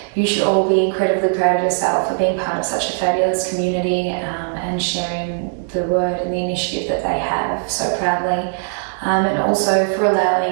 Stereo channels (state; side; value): silent; left; digital silence